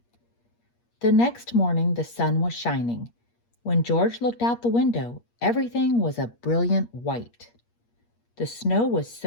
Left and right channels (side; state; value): right; late; 8.5 ms